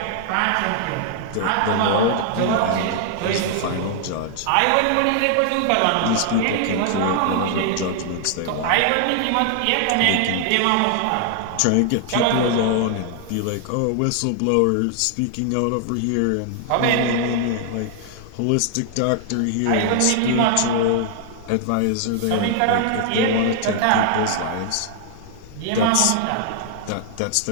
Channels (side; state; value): both; different; correlation 0.00